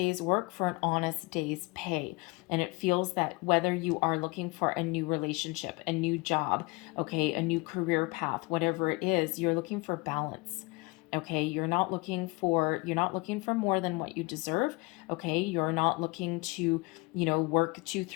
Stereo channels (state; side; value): quieter; right; 25.8 dB